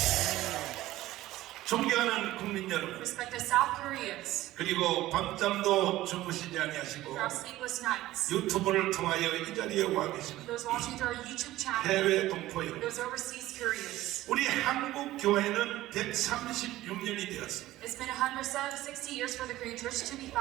존경하는 국민 여러분, Respected South Koreans, 그리고 밤잠도 주무시지 아니하시고 for our sleepless nights, 유튜브를 통하여 이 자리에 와 계시는 those watching through our YouTube channel, 해외 동포 여러분, those overseas Koreans. 우리 한국 교회는 136년이 되었습니다. It's been 160 years for the Korean Church to be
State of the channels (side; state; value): left; quieter; 16.0 dB